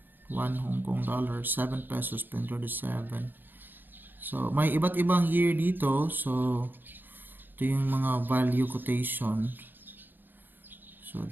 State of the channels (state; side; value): late; left; 0.092 ms